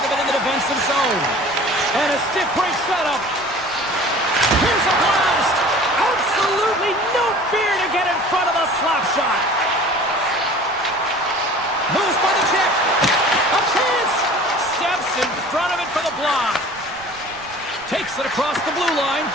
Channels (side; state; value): right; noise; rumble, 24 dB below the sound